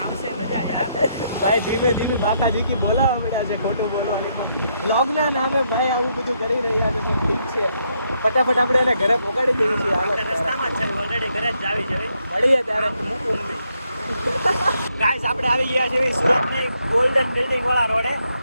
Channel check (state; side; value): inverted; both; correlation -0.76